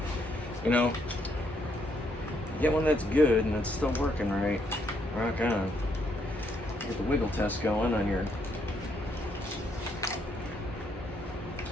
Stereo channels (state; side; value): normal; both; correlation 0.73